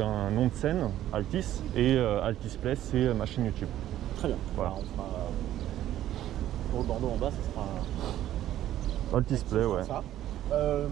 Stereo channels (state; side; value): quieter; left; 12.7 dB